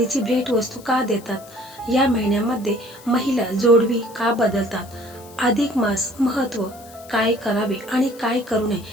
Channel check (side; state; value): left; noise; hiss, 22 dB below the sound